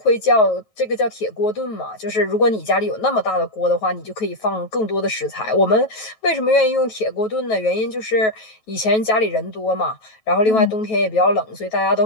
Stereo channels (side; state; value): right; late; 9.2 ms